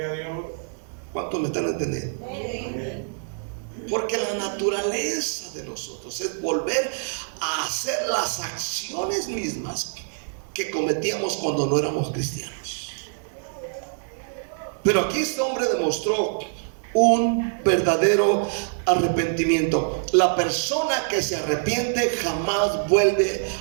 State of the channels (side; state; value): left; silent; digital silence